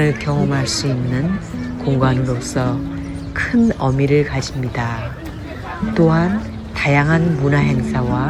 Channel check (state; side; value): identical; both; correlation 1.00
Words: 경험할 수 있는 공간으로서 큰 의미를 가집니다. 또한 다양한 문화